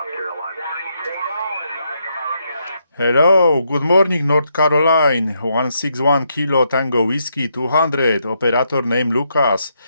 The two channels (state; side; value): inverted; both; correlation -0.78